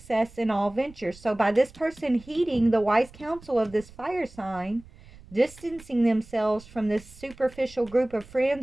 in all ventures. So by this person heeding the wise counsel of this fire sign, distancing themselves from this superficial group of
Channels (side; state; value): right; noise; rumble, 21 dB below the sound